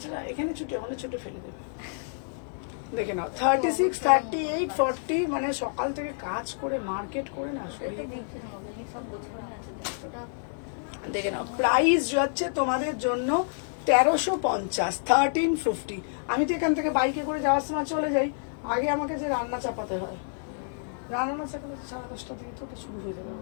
এখানে ছুটে ওখানে ছুটে ফেলে দেবে। দেখে নাও 36, 38, 40, মানে সকাল থেকে কাজ করে মার্কেট করে না এটা শরীর। তো বুঝতে হবে, সব গোছানো আছে। ওটা দেখে নাও প্রাইস যাচ্ছে তোমাদের জন্য 1350, 1350। আমি তো এখান থেকে বাইকে করে যাওয়ার সময় চলে যাই, আগে আমাকে যে রান্না চাপাতে হয়, রান্না চাপাতে 10:30 থেকে তো ওটা শুরু হয়ে যাবে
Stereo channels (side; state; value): right; silent; digital silence